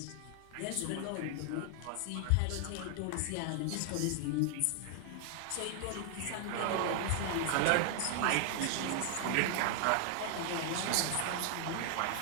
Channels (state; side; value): different; both; correlation 0.00